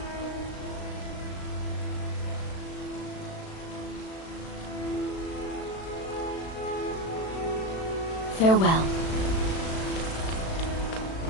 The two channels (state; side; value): late; right; 36 ms